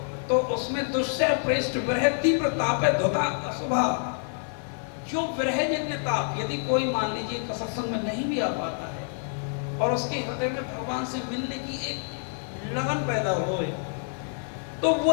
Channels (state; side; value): silent; right; 60 dB below the other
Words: तो उसमें दुस्सह प्रेष्ठ विरह तीव्र ताप है धुता अशुभा। जो विरहजन्य ताप, यदि कोई मान लीजिए सत्संग में नहीं भी आ पाता है और उसके हृदय में भगवान से मिलने की एक लगन पैदा होए, तो